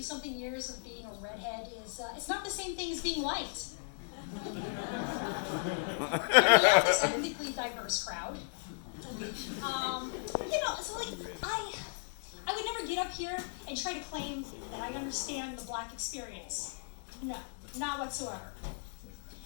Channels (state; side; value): silent; right; 54 dB below the other